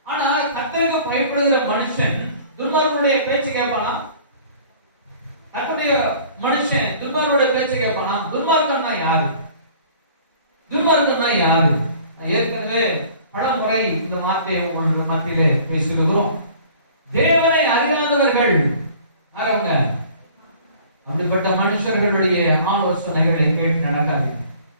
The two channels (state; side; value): inverted; both; correlation -0.50